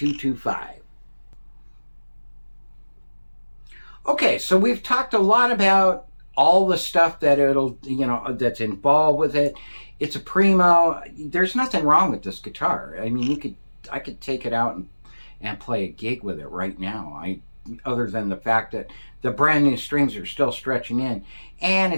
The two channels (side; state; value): both; inverted; correlation -1.00